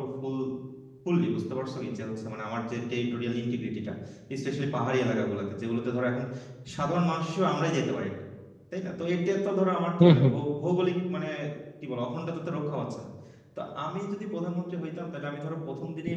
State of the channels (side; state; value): both; identical; correlation 1.00